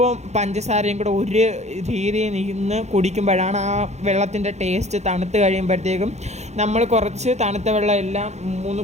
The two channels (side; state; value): left; late; 0.33 ms